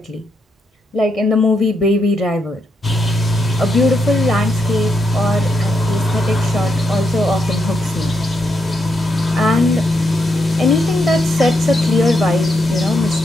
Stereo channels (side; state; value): both; normal; correlation 0.81